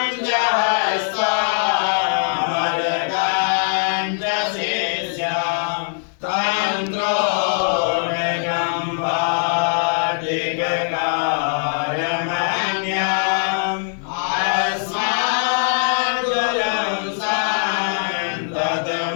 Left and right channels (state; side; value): silent; right; 61 dB below the other